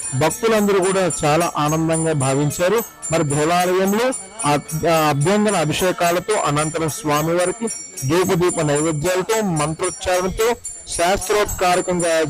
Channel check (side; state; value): both; identical; correlation 1.00